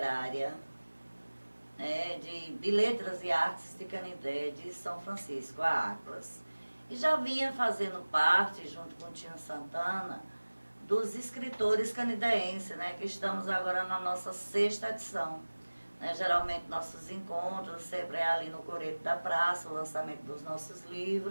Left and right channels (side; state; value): both; inverted; correlation -1.00